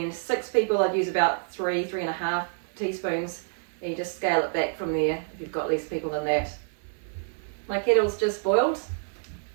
6 people, I'd use about 3.5 teaspoons. And you just scale it back from there if you've got less people than that. My kettle's just boiled.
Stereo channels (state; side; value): silent; left; 60 dB below the other